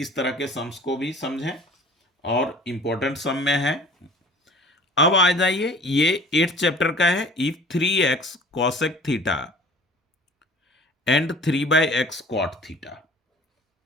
तरह के सम्स को भी समझें, और इंपॉर्टेंट सम में है। अब आ जाइए, ये 8 चैप्टर का है। If 3x cosec theta and 3/x cot theta,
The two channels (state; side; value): normal; both; correlation 0.47